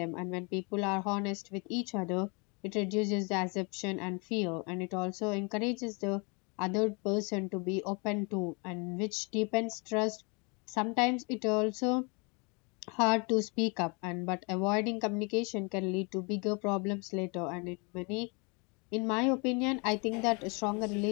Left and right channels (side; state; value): right; quieter; 31.9 dB